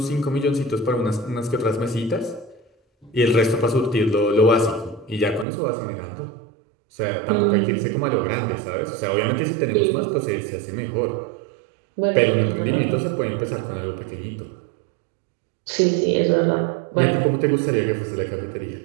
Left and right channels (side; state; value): left; drops out; at 5.5 s